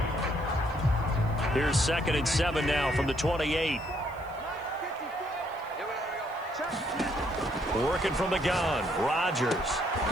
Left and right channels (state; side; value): noise; left; hiss, 28 dB below the sound